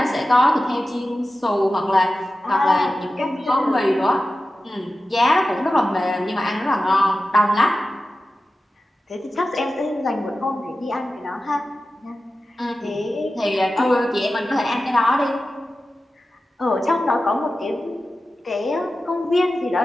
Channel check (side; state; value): both; normal; correlation 0.94